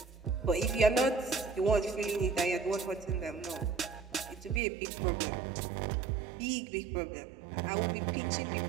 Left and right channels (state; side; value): drops out; left; at 4.6 s